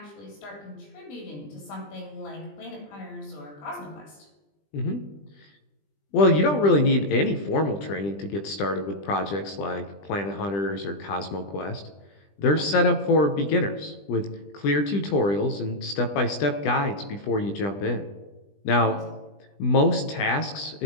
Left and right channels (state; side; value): late; right; 20 ms